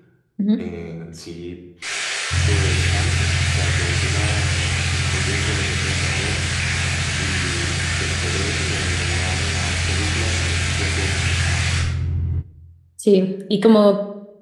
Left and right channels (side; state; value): both; identical; correlation 1.00